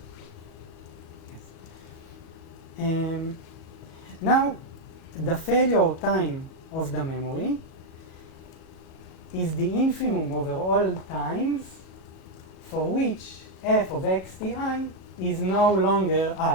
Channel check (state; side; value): late; right; 37 ms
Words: Yes. Now, the failure time of the memory is the infimum over all times for which f of xti is no longer